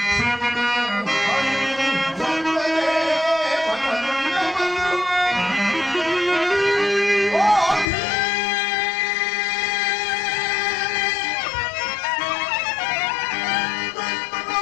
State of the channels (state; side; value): drops out; right; at 7.9 s